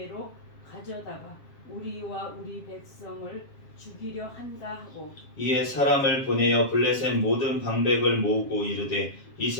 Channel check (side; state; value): right; late; 7.4 ms